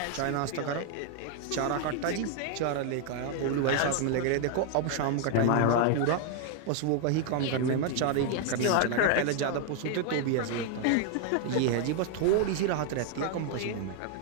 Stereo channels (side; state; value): both; different; correlation 0.00